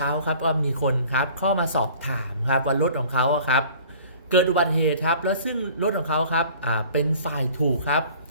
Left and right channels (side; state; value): both; inverted; correlation -0.48